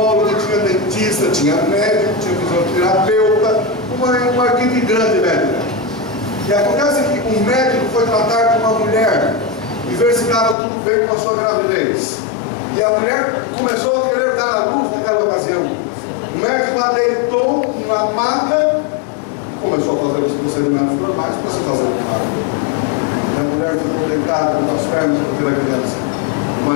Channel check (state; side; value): drops out; right; at 10.6 s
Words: tinha dentista, tinha médico, tinha fisioterapeuta, uma equipe grande médica. E acontece que um médico foi tratar com uma mulher e ver se estava tudo bem com a sua gravidez. E a mulher começou a querer dar à luz naquela ocasião. O médico lá deitou na maca, começou a fazer os procedimentos normais para se fazer o parto. E a mulher ficou deitada com as pernas para ver a criança. O